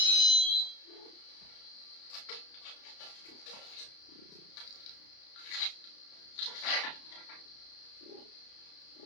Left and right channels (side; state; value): right; late; 32 ms